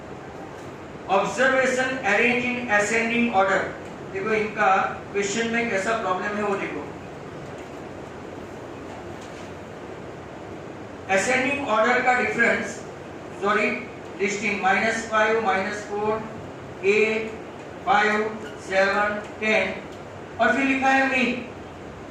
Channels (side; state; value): both; identical; correlation 1.00